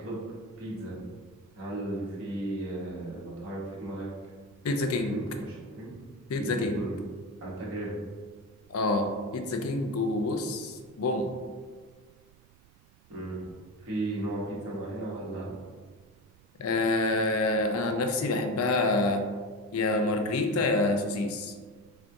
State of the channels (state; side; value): noise; right; rumble, 28 dB below the sound